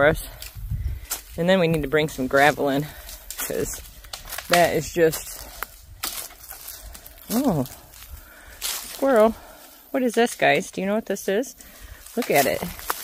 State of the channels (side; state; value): both; identical; correlation 1.00